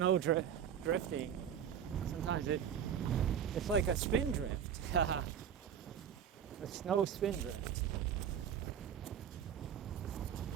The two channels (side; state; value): left; quieter; 8.6 dB